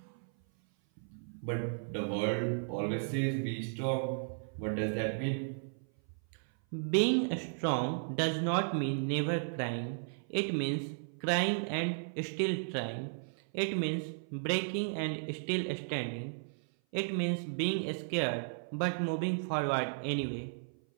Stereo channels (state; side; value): silent; left; 55 dB below the other